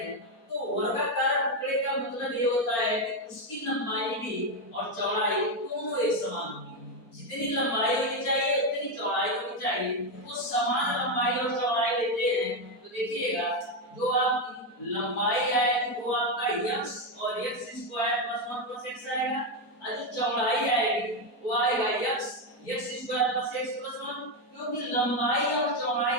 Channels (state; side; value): late; right; 4.4 ms